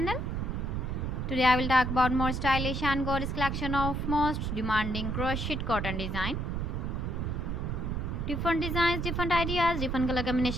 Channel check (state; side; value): noise; right; rumble, 2 dB below the sound